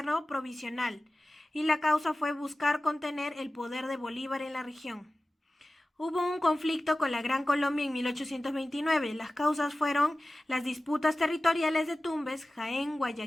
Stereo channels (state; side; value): normal; both; correlation 0.96